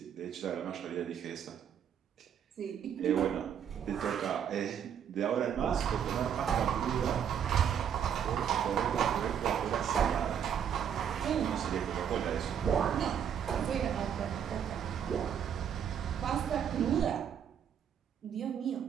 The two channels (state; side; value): quieter; left; 8.5 dB